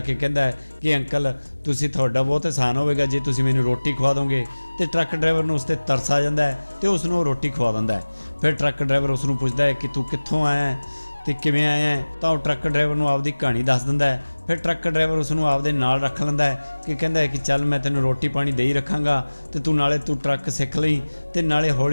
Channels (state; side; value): inverted; both; correlation -1.00